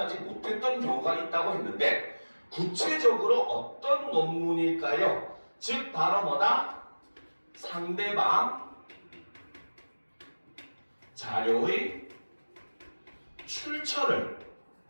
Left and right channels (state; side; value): inverted; both; correlation -1.00